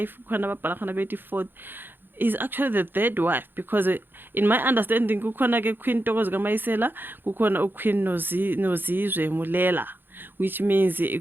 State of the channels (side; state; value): left; late; 0.098 ms